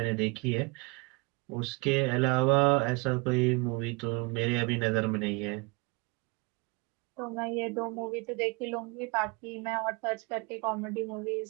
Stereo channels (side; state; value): left; quieter; 28.3 dB